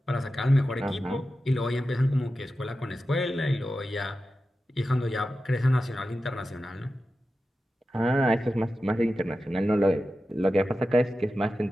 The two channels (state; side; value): normal; both; correlation 0.92